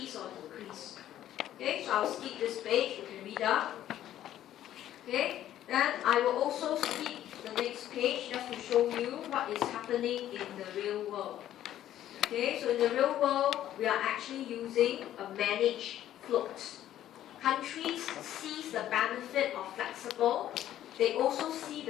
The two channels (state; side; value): quieter; right; 12.2 dB